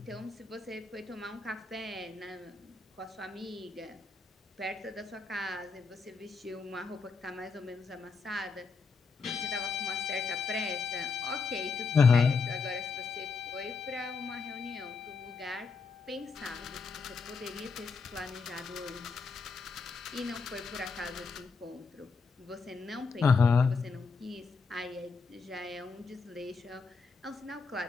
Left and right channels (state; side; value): quieter; right; 4.6 dB